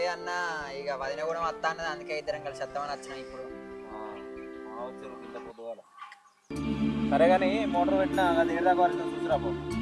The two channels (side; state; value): both; identical; correlation 1.00